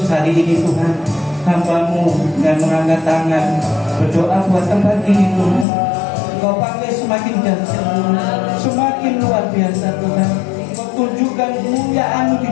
hari ini Tuhan, hamba-Mu dengan mengangkat tangan berdoa buat tempat ini Tuhan. Kau pakai semakin dahsyat Tuhan, semakin luar biasa Tuhan. Kau tunjukkan kemuliaan-Mu di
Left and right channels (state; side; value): drops out; right; at 5.7 s